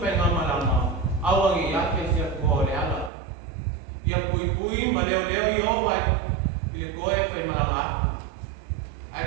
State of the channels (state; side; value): drops out; left; at 3.1 s